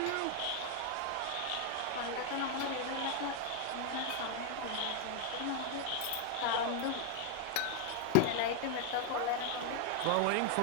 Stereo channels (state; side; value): different; both; correlation 0.00